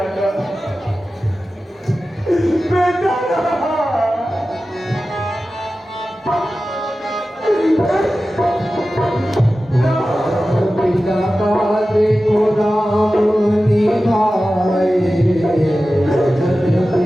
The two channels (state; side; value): normal; both; correlation 0.95